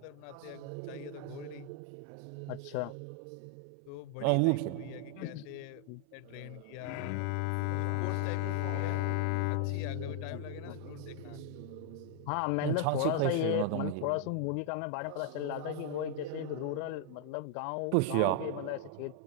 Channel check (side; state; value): both; different; correlation 0.00